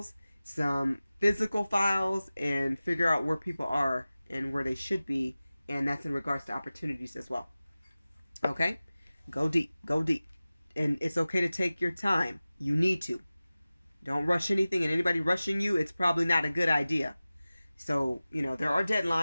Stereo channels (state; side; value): inverted; both; correlation -0.97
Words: some physical files, and figure out where people are and where they should be. And that's in regards to opportunities as well. Okay? Go deep. Go deep. And it's okay to take your time. You need to. Don't rush anything. And anybody rushing you, it's probably not a good idea. So, there are